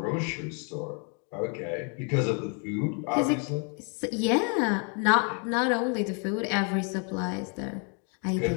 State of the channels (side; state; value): right; quieter; 38.9 dB